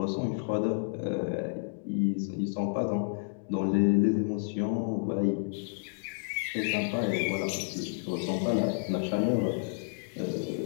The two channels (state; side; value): silent; right; digital silence